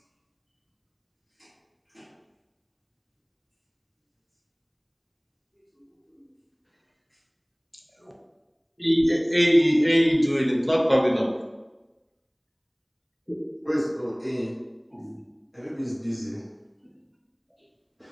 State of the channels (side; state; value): both; identical; correlation 1.00